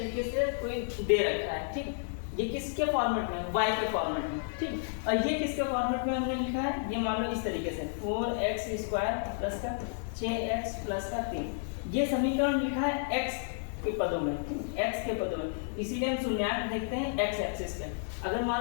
से कोई दे रखा है। ठीक, ये किसके फॉर्मेट में? y के फॉर्मेट में। ठीक, और ये किसके फॉर्मेट में हमने लिखा है? ये मान लो इस तरीके से 4x² प्लस का 6x प्लस का 3, ये समीकरण लिखा है x के पदों में, x के पदों में, इसीलिए हम शून्यांक देखते हैं x एक्सिस पे। अगर मान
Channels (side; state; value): right; silent; digital silence